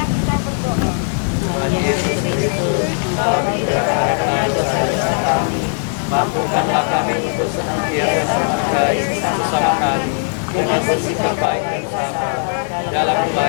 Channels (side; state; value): right; silent; 64 dB below the other